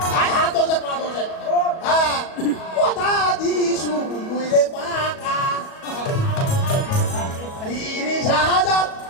আই হাত ধরে পা ধরে হ্যাঁ কথা দিছু মুইরে পাকা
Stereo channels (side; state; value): right; late; 37 ms